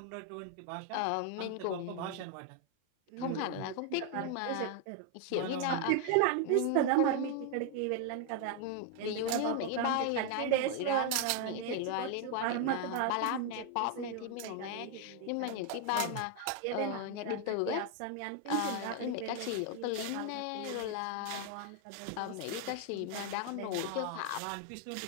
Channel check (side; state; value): both; different; correlation 0.00